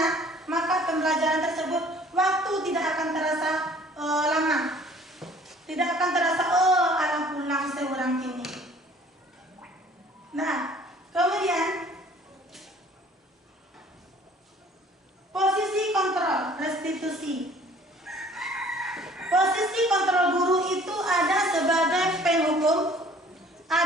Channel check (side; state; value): both; normal; correlation 0.53